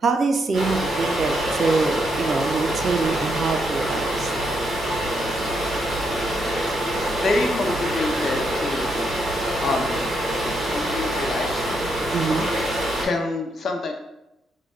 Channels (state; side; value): normal; both; correlation 0.78